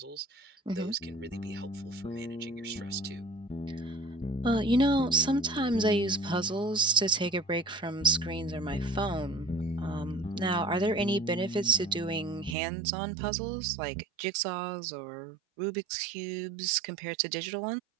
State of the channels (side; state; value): left; drops out; at 12.6 s